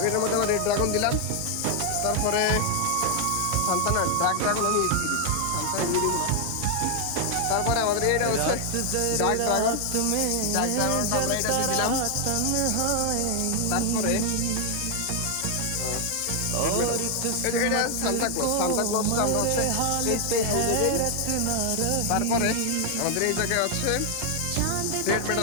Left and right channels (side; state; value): both; different; correlation 0.00